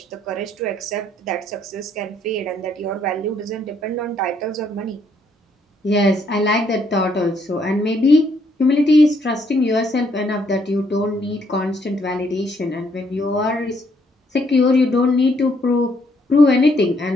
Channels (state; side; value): normal; both; correlation 0.70